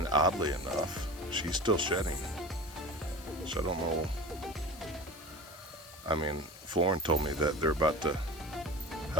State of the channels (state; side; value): noise; left; hiss, 19 dB below the sound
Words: oddly enough, she's still shedding. So I don't know. I mean, Florin told me that they're about to